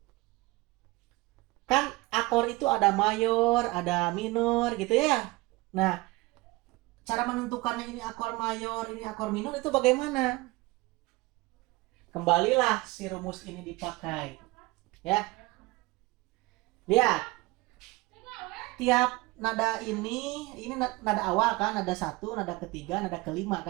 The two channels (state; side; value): quieter; left; 22.0 dB